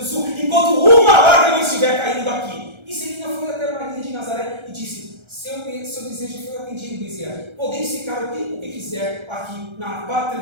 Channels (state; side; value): late; left; 1.3 ms